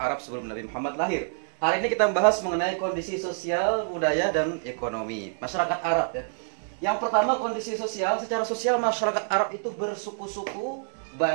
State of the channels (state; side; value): silent; left; digital silence